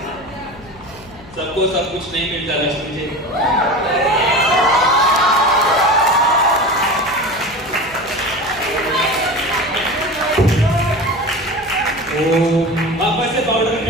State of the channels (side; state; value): left; noise; hum, 21 dB below the sound